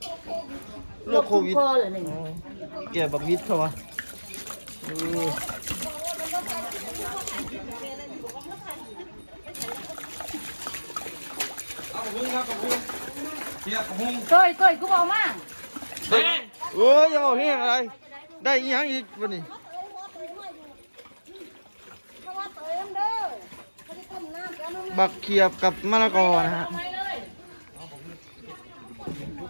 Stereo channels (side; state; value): both; inverted; correlation -1.00